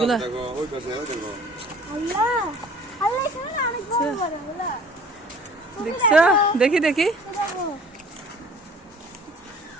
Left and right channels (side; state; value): both; normal; correlation 0.50